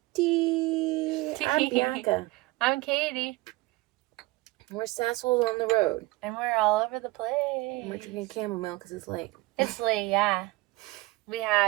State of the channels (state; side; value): quieter; left; 21.6 dB